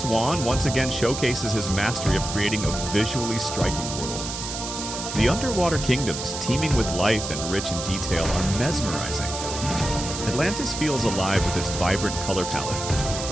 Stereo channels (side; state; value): right; noise; hiss, 6 dB below the sound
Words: Wan once again showcases his mastery of creating a visually striking world. The underwater kingdoms, teeming with life and rich in detail, are mesmerizing. Atlantis feels alive with its vibrant color